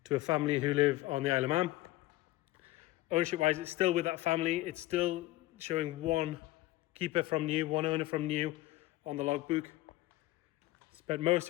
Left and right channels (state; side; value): quieter; right; 17.6 dB